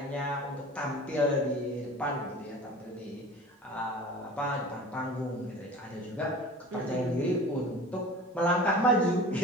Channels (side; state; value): both; normal; correlation 0.39